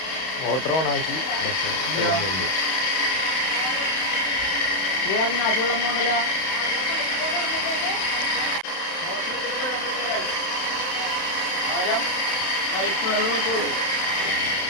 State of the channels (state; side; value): late; right; 31 ms